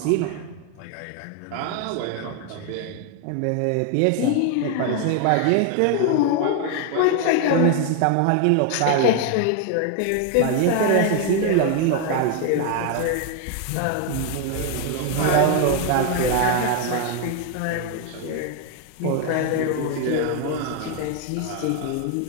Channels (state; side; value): different; both; correlation 0.00